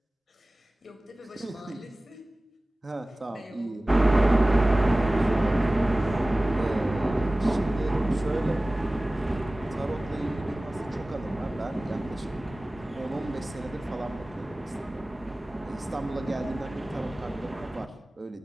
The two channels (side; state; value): both; normal; correlation 0.98